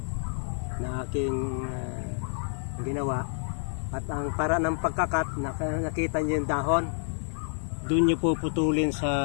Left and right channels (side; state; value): right; silent; 59 dB below the other